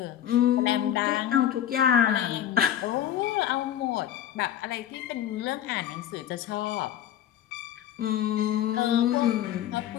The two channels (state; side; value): quieter; right; 11.0 dB